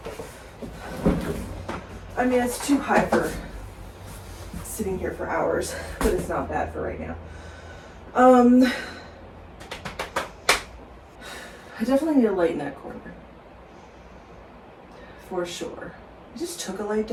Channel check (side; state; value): both; identical; correlation 1.00